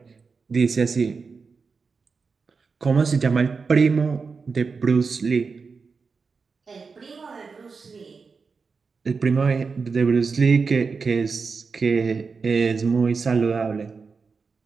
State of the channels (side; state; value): left; quieter; 4.9 dB